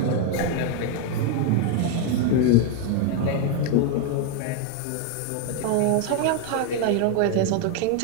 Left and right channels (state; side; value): different; both; correlation 0.01